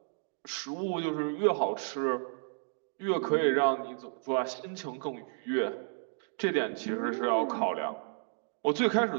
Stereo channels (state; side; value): silent; left; digital silence